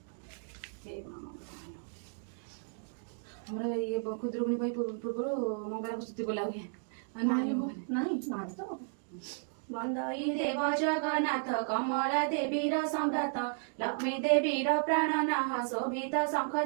हमरा ये खुदरुकुनी भाई पूर्व मंगला को स्तुति बोला हुए नहीं तो बंदाई देव जगन्नाथ कमला देवी संघात लक्ष्मी देवी प्राणनाह शोभित शंख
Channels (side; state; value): left; silent; digital silence